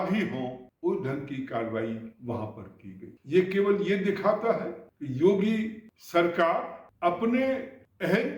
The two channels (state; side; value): identical; both; correlation 1.00